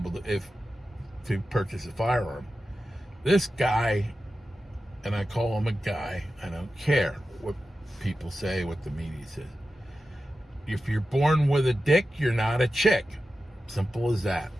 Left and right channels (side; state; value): both; normal; correlation 0.92